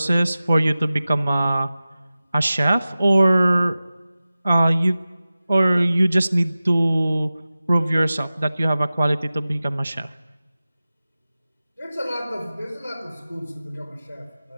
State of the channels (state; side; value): inverted; both; correlation -0.96